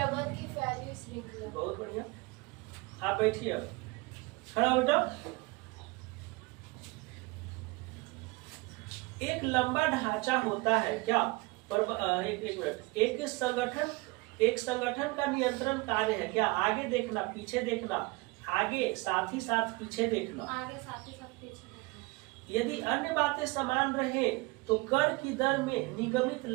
बहुत बढ़िया। आप बैठिए, अब खड़ा हो बेटा। एक लंबा ढांचा होता है। क्या? एक मिनट। एक संगठन का नियंत्रण कार्य है। क्या? आगे देखना, पीछे देखना, आगे साथ ही साथ पीछे देखना। यदि अन्य बातें समान रहे तो कर की दर में निगमित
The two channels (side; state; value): left; quieter; 24.8 dB